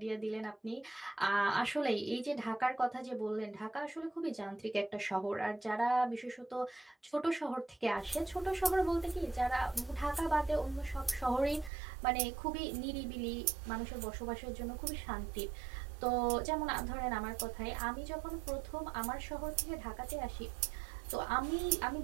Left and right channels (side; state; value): left; drops out; at 11.7 s